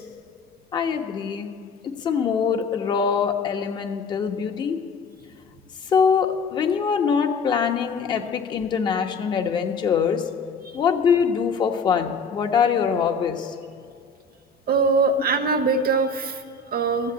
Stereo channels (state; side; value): quieter; right; 3.7 dB